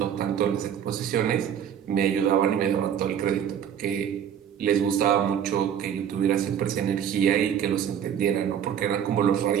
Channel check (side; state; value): left; quieter; 8.9 dB